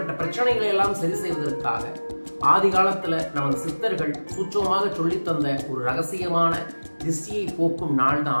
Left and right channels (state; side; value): inverted; both; correlation -1.00